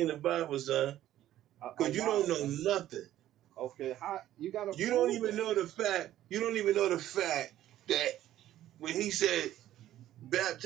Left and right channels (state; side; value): quieter; left; 13.0 dB